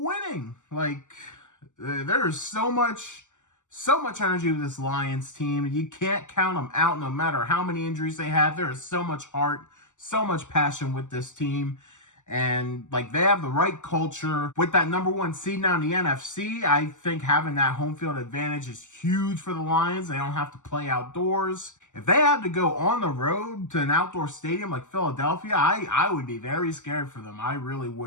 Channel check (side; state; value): right; late; 0.85 ms